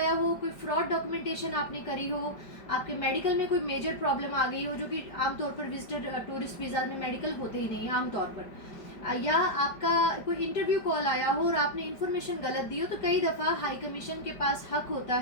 हो, कोई फ्रॉड डॉक्यूमेंटेशन आपने करी हो, आपके मेडिकल में कोई मेजर प्रॉब्लम आ गई हो, जो कि आमतौर पर विजिटर टूरिस्ट वीज़ा में मेडिकल होते ही नहीं है आमतौर पर, या आपका कोई इंटरव्यू कॉल आया हो और आपने इन्फॉर्मेशन गलत दी हो, तो कई दफ़ा हाई कमीशन के पास हक होता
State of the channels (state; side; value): late; right; 5.1 ms